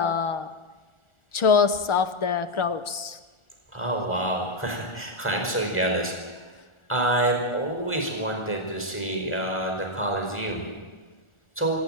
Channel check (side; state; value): right; late; 1.4 ms